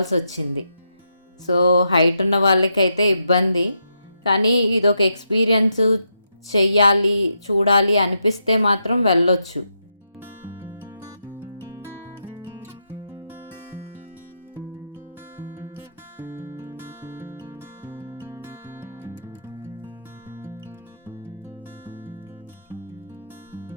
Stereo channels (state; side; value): inverted; both; correlation -0.81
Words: వచ్చింది. సో హైట్ ఉన్న వాళ్ళకైతే ఇబ్బంది, కానీ ఇదొక ఎక్స్పీరియన్స్, చెయ్యాలి చూడాలి అనిపిస్తే మాత్రం వెళ్ళొచ్చు.